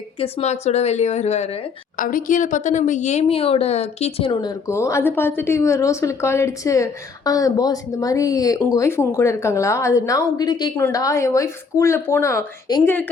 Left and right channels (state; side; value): quieter; right; 5.1 dB